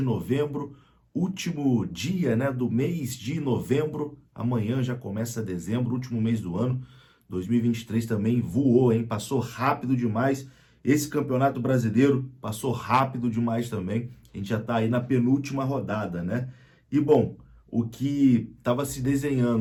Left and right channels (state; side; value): identical; both; correlation 1.00